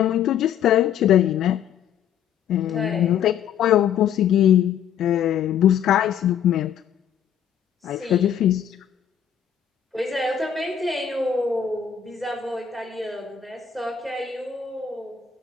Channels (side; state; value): right; quieter; 9.0 dB